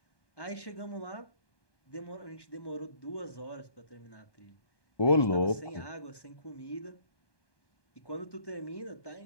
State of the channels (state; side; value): late; right; 1.1 ms